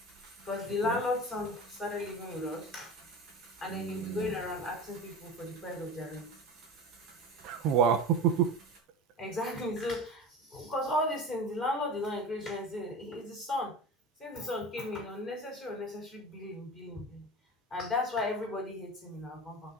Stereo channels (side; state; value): both; normal; correlation 0.31